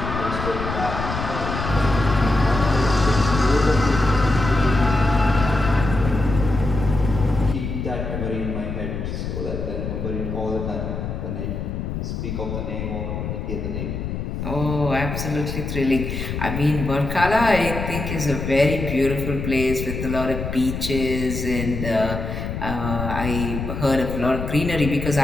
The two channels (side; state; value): left; noise; rumble, 5 dB below the sound